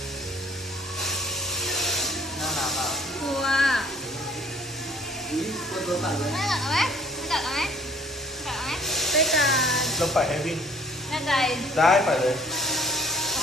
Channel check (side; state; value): both; normal; correlation 0.55